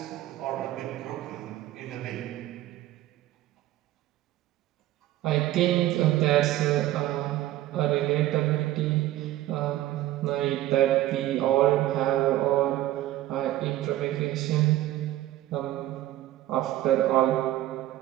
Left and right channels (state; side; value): quieter; left; 14.9 dB